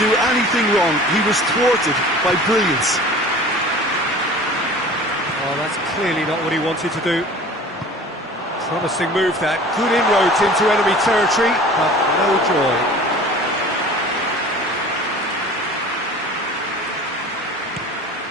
anything wrong. He was thwarted by brilliance. Oh, that's clearly not what he wanted to do. Promising move that. Good inroads into enemy territory, but no joy.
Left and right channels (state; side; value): normal; both; correlation 0.42